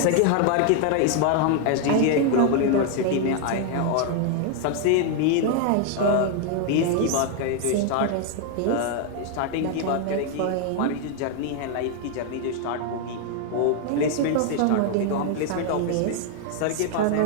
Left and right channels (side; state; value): both; different; correlation 0.00